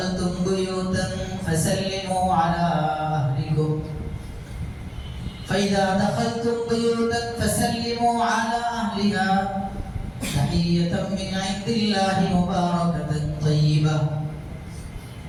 বুয়ুতান ফাসাল্লিমু আলা আহলিকুম ফাইদা দাখালতুম বুয়ুতান ফাসাল্লিমু আলা আহলিহা তাহিয়াতাম মিন ইনদিল্লাহি মুবারাকাতান তাইয়্যিবা।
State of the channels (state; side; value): identical; both; correlation 1.00